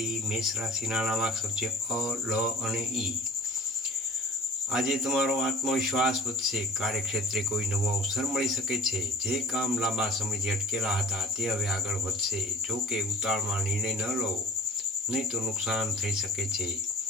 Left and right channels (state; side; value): normal; both; correlation 0.44